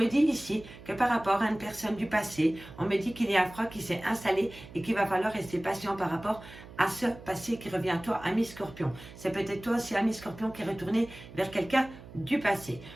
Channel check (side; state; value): right; noise; hum, 17 dB below the sound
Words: dit ici que par rapport à une personne du passé, on me dit qu'il y a un froid qui s'est installé et qu'il va falloir rester patient par rapport à ce passé qui revient à toi, ami Scorpion. C'est peut-être toi aussi, ami Scorpion, qui est retourné vers quelqu'un du passé.